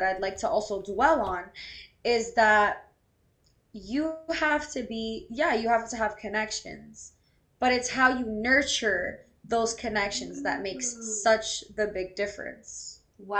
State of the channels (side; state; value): both; identical; correlation 1.00